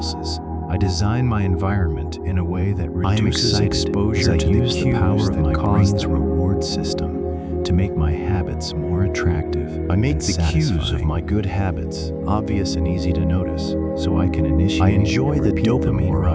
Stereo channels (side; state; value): both; identical; correlation 1.00